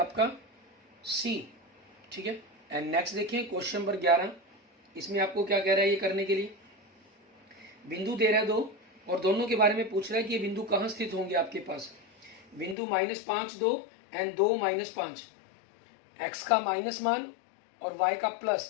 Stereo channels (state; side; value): drops out; right; at 12.8 s